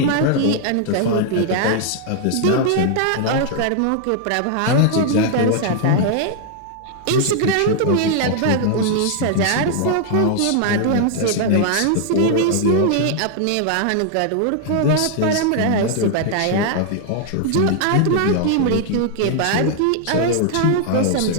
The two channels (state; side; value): different; both; correlation 0.00